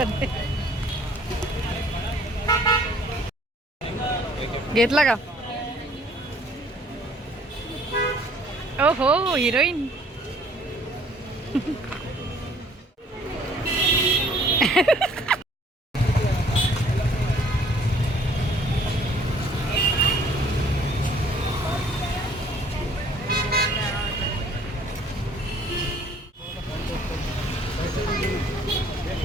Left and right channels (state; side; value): normal; both; correlation 0.58